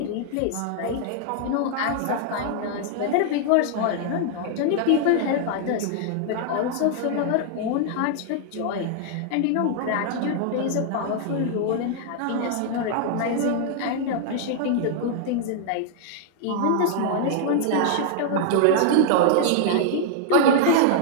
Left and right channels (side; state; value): both; different; correlation -0.01